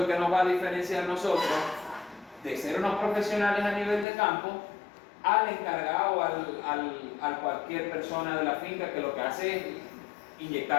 que nos va a diferenciar nosotros de ser unos profesionales a nivel de campo al encargado, al cualquier persona de la finca que lo que hace es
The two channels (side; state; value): right; drops out; at 4.0 s